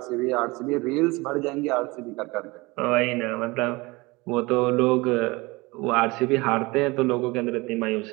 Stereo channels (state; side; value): quieter; left; 23.6 dB